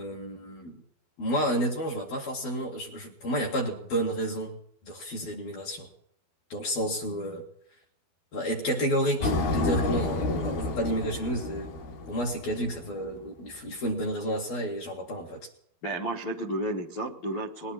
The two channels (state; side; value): late; right; 12 ms